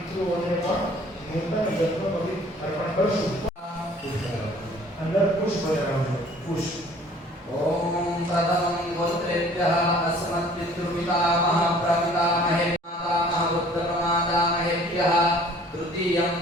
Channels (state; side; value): normal; both; correlation 0.53